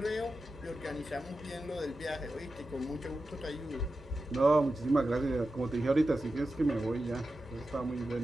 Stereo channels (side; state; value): both; normal; correlation 0.92